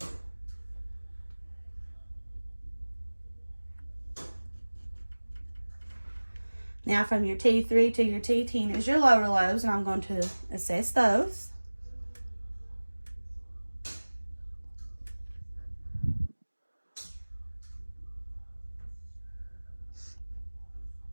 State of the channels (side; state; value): both; inverted; correlation -1.00